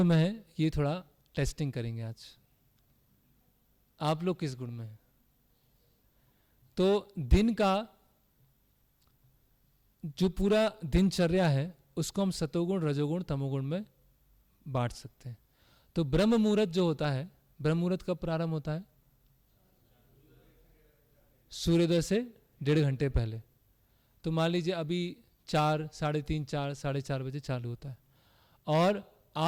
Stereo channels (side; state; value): both; identical; correlation 1.00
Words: में हैं, ये थोड़ा टेस्टिंग करेंगे आज। आप लोग किस गुण में हैं? तो दिन का जो पूरा दिनचर्या है उसको हम सतोगुण, रजोगुण, तमोगुण में बांट सकते हैं। तो ब्रह्म मुहूर्त जो होता है, ब्रह्म मुहूर्त कब प्रारंभ होता है? सूर्योदय से 1.5 घंटे पहले। तो मान लीजिए अभी 4, 3:30, 4, 4:30 बजे चालू होता है, और